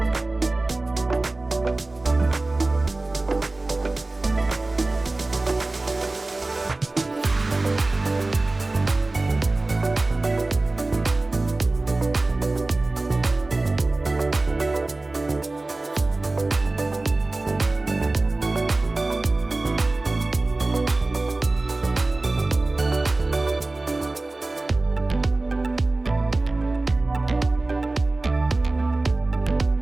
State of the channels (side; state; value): left; quieter; 3.1 dB